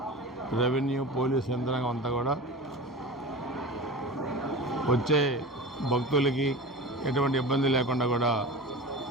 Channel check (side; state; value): both; normal; correlation 0.31